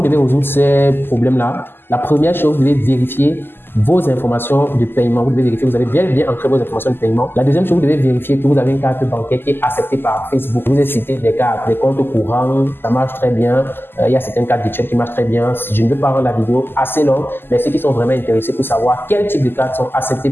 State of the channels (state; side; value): late; right; 0.10 ms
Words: devez résoudre ces problèmes-là? La première chose, vous devez vérifier vos informations de paiement. Vous devez vérifier que vous avez bien ancré vos informations de paiement. La deuxième chose, vous devez vérifier que vous avez une carte bancaire qui est acceptée par Facebook. Je vous ai cité des cartes, des comptes courants, ça marche très bien. Il y a certaines cartes virtuelles qui marchent très bien. Je ne veux pas rendre la vidéo assez longue, mais ceux qui sont vraiment intéressés pour savoir quel type de cartes sont acceptées